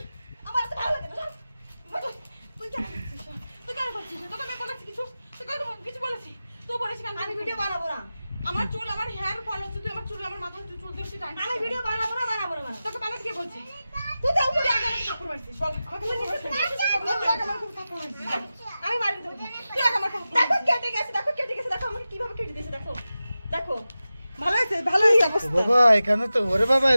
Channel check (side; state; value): both; inverted; correlation -0.94